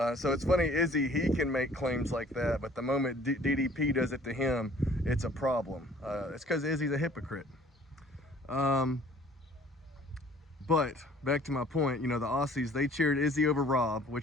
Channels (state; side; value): normal; both; correlation 0.54